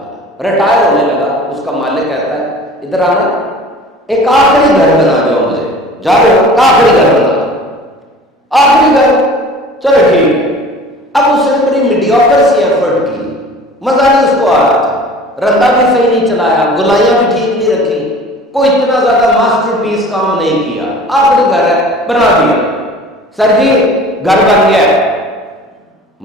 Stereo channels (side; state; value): both; normal; correlation 0.44